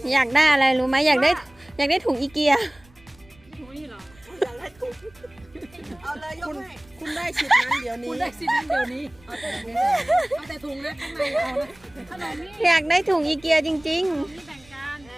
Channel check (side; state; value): right; noise; rumble, 27 dB below the sound